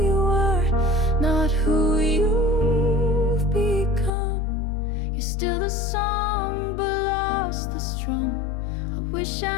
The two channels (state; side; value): drops out; right; at 4.1 s